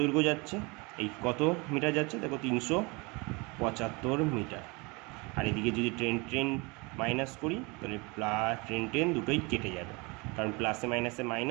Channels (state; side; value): quieter; left; 27.7 dB